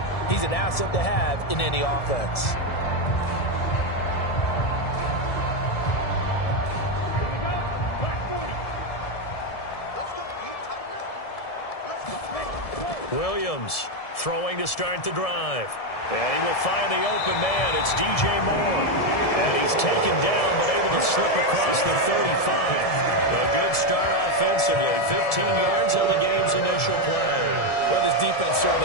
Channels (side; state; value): right; late; 1.7 ms